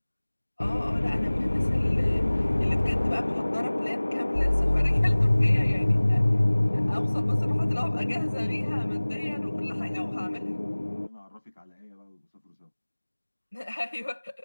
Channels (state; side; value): inverted; both; correlation -1.00